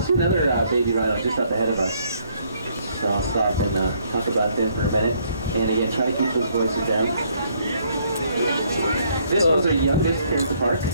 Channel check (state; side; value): inverted; both; correlation -0.67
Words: see another baby rhino just up ahead of us. So I'll stop and talk about them for a minute. And again, try to keep those voices down. This one's our youngest here at the park.